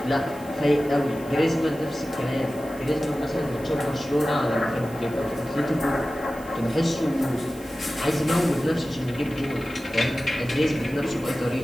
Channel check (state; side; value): noise; right; hiss, 21 dB below the sound